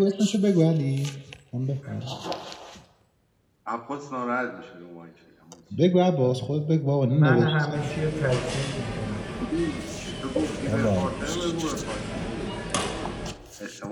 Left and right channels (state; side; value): identical; both; correlation 1.00